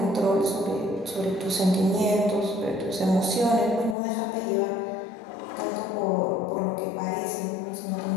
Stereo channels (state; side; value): drops out; right; at 4.0 s